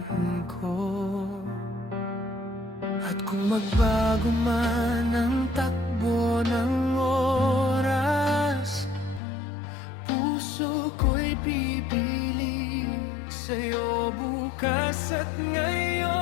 ko. At kung magbago man ang takbo ng oras, puso ko'y pipili sa'yo bukas at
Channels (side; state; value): right; drops out; at 9.2 s